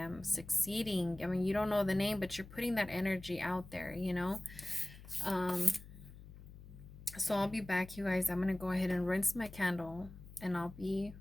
succeeding. I mean, you don't know the name, but you're putting that energy out there, you know. So I'll be back, you guys. I'm gonna go ahead and rinse my candle, and I'll be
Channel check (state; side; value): noise; left; hum, 17 dB below the sound